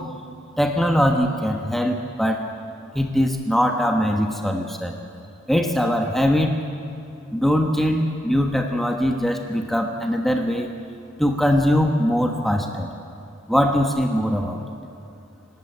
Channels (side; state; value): both; normal; correlation 0.86